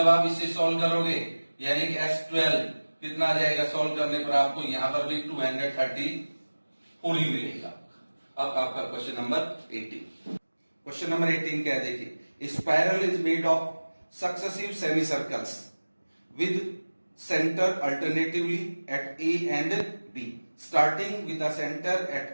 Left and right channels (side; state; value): both; inverted; correlation -1.00